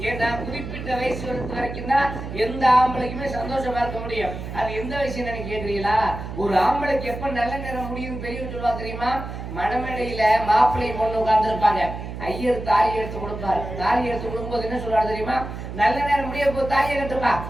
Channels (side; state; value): right; noise; hum, 8 dB below the sound